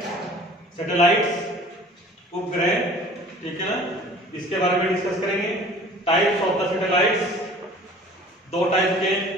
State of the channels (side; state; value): both; normal; correlation 0.47